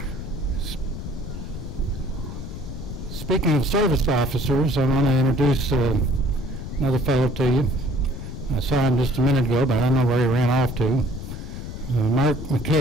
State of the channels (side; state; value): left; noise; rumble, 8 dB below the sound